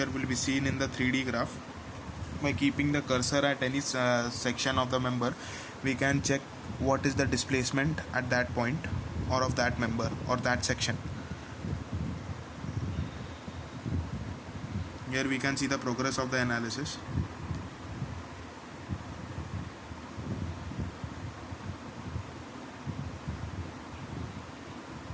will be seen in the 3D graph. By keeping the cursor at any section of the member, we can check what is the displacement at that point, or of that member or that section. Here we can see the progress of the analysis.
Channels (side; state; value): both; identical; correlation 1.00